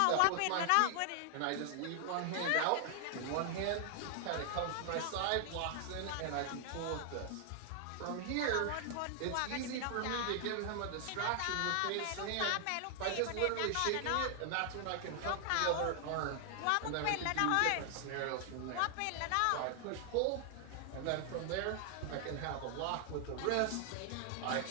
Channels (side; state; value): both; different; correlation 0.00